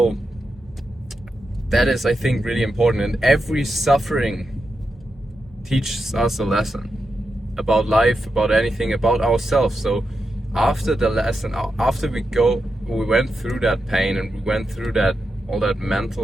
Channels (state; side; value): normal; both; correlation 0.87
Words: that is, I think, really important, and every suffering teaches us a lesson about life, about anything, about ourselves. So after the lesson, after we went through that pain, and we went through all that